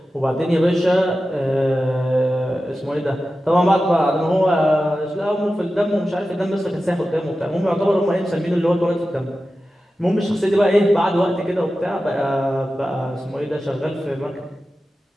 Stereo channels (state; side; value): normal; both; correlation 0.93